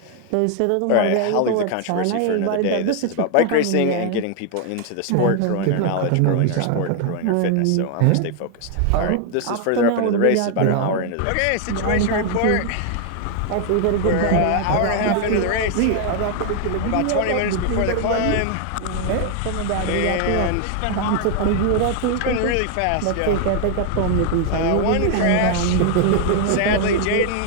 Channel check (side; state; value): both; different; correlation 0.00